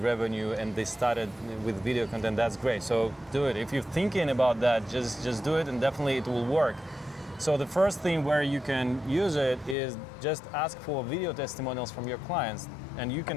revenue and they started with video content. That's great. So do it. If you're thinking about that, just do it, and definitely it will work. So the first thing where you can use it is just ask for video testimonials from your clients, and you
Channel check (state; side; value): drops out; right; at 9.8 s